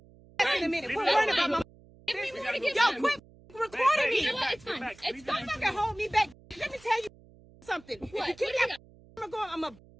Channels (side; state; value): right; noise; hum, 25 dB below the sound